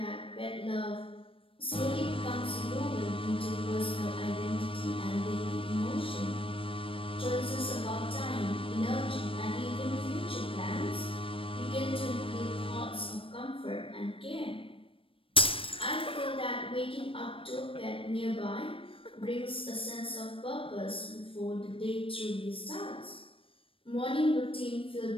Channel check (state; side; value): late; right; 0.26 ms